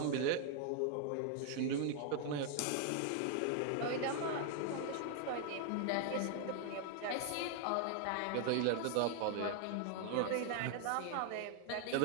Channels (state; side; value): different; both; correlation 0.00